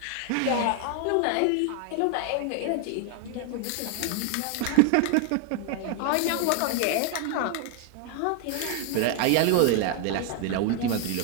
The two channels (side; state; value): both; different; correlation 0.00